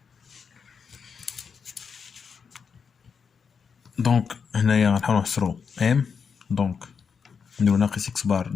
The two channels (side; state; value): right; quieter; 6.1 dB